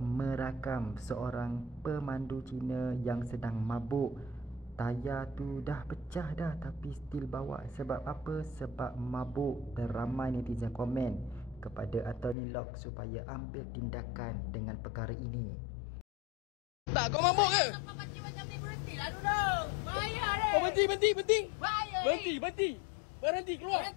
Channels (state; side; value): drops out; right; at 12.4 s